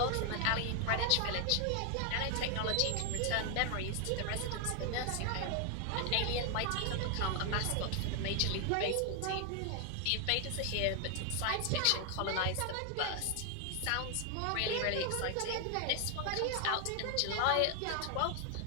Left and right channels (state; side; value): different; both; correlation 0.00